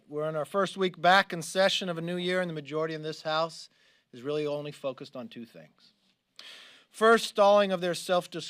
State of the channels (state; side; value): identical; both; correlation 1.00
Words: we're in our first week back in session of a new year, and the majority in this House is really only focused on two things. First, stalling of their